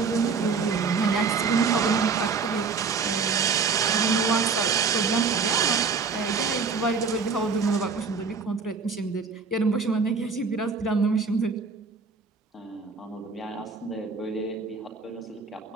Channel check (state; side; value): quieter; left; 5.0 dB